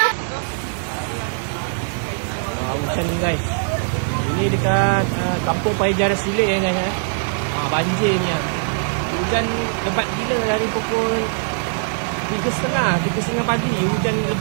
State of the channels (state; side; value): silent; left; 56 dB below the other